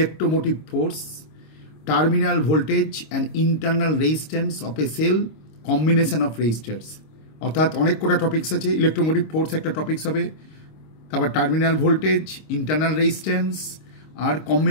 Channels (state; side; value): late; right; 26 ms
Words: force, terminal voltage and internal resistance of a cell, combination of resistors. অর্থাৎ অনেক কটা টপিক্স আছে। ইলেকট্রোমোটিভ ফোর্স একটা টপিক্স হবে, তারপর টার্মিনাল ভোল্টেজ, ইন্টারনাল রেজিস্ট্যান্স আর